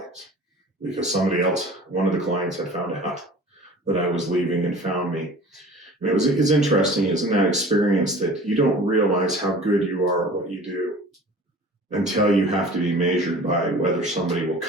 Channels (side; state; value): both; normal; correlation 0.43